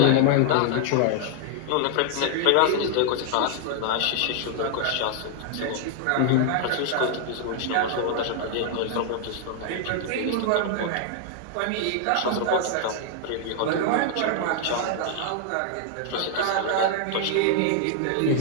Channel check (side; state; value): both; different; correlation 0.00